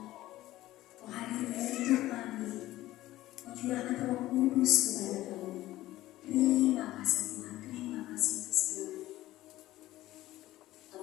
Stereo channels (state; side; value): quieter; right; 15.9 dB